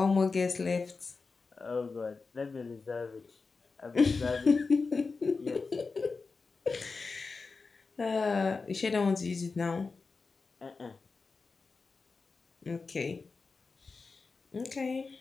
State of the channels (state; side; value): quieter; right; 4.4 dB